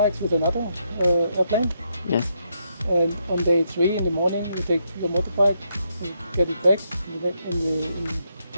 with another airplane. Yes. And on day 3 in the morning, you take your motorbike, you get it back,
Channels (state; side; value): inverted; both; correlation -0.78